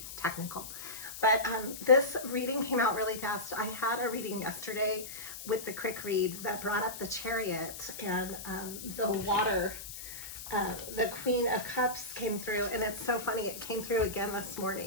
technical. But this reading came out really fast. I had a reading yesterday with the quick read that brought up the chariot and the water. The Queen of Cups came through, and it's so funny. It came through again this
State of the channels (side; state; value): left; noise; hiss, 10 dB below the sound